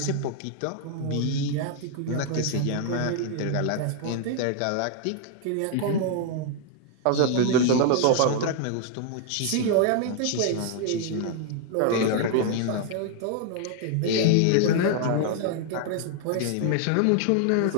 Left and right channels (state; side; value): different; both; correlation 0.00